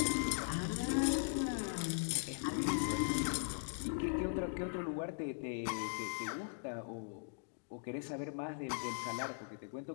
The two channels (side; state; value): right; silent; digital silence